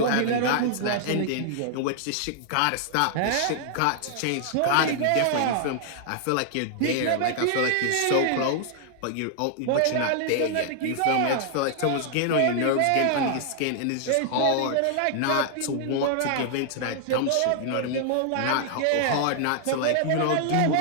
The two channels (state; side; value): different; both; correlation -0.01